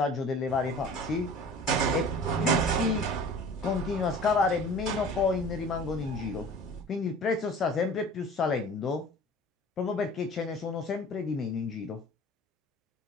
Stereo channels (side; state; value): both; normal; correlation 0.43